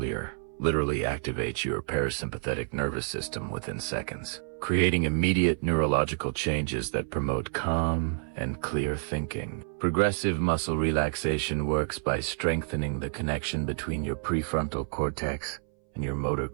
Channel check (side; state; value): left; silent; 58 dB below the other